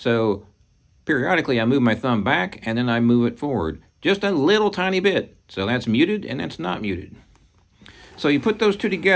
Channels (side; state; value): both; identical; correlation 1.00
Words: Periodically, I move my thumb back and then I move it forward. Just a little tiny bit. So that's muted and that's not muted. So you put those two